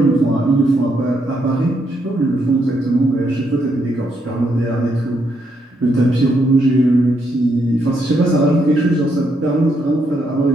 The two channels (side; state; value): both; normal; correlation 0.77